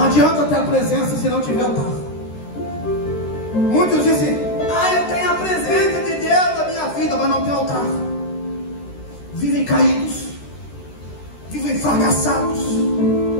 adianta ter a presença se não tiver altar. Muitos dizem: eu tenho a presença de Deus na minha vida, mas não tem altar. Vivem caídos, vivem fracassados,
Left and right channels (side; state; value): right; late; 13 ms